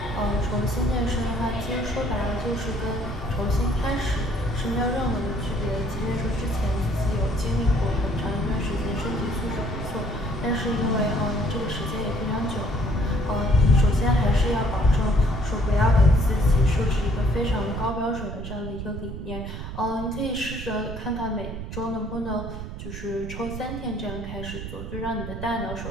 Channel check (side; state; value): right; noise; rumble, 8 dB below the sound